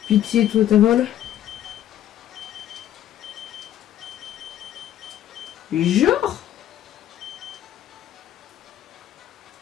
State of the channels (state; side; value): quieter; right; 11.8 dB